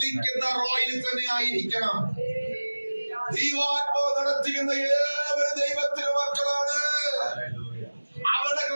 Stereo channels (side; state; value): both; inverted; correlation -1.00